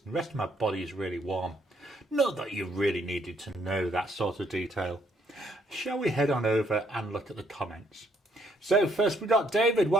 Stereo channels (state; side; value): normal; both; correlation 0.69